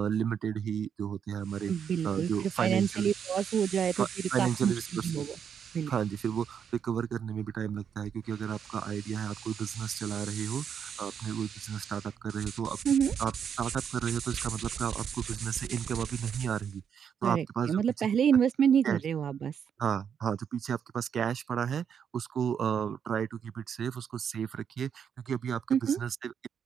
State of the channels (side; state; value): left; quieter; 7.8 dB